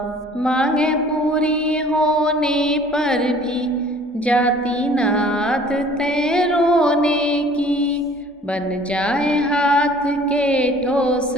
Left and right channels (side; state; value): both; normal; correlation 0.52